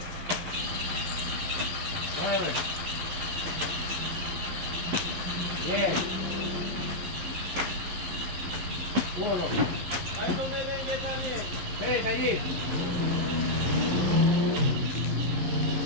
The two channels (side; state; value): left; late; 11 ms